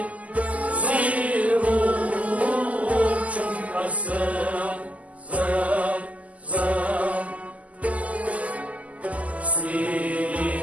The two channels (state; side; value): late; left; 0.071 ms